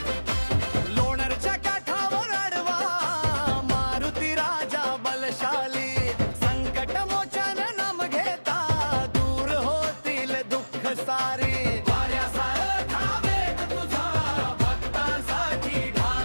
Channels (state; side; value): inverted; both; correlation -1.00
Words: लोणारच्या काठावर अडवा मारुती राजा बलशाली, संकट मोचन नाम घेता दूर होतील दुःख सारी।